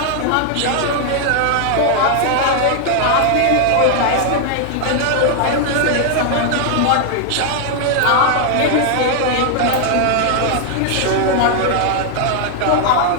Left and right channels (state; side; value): different; both; correlation 0.00